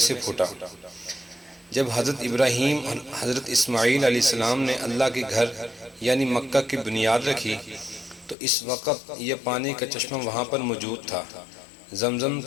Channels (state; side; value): drops out; right; at 8.3 s